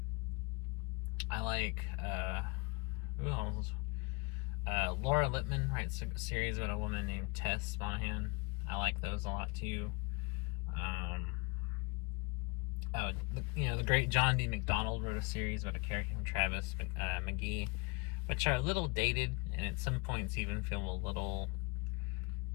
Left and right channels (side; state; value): right; quieter; 27.1 dB